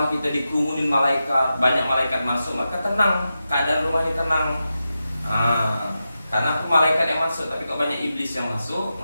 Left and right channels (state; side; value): inverted; both; correlation -0.90